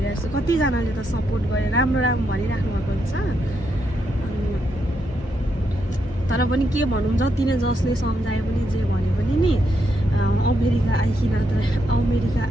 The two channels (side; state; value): both; normal; correlation 0.80